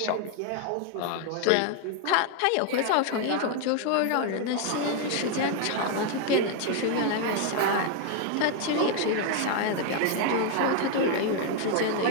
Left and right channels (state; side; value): different; both; correlation 0.00